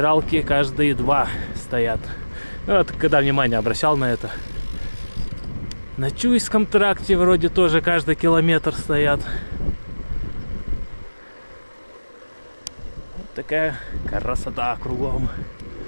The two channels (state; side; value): inverted; both; correlation -1.00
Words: каждые 2 стоят. Ну, вот когда внимание обращал на это. На Чуйском тракте вроде тоже каждый километр стоят. Вот такая красота кругом.